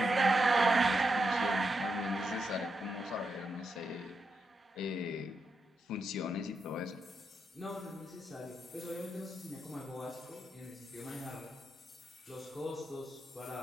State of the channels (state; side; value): normal; both; correlation 0.84